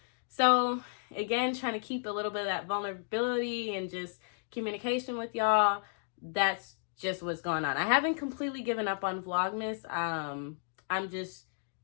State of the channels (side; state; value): right; silent; digital silence